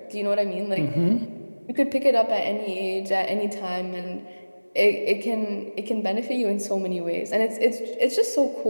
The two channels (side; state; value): both; inverted; correlation -1.00